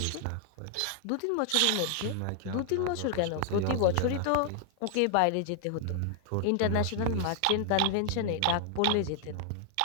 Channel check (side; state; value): both; different; correlation 0.00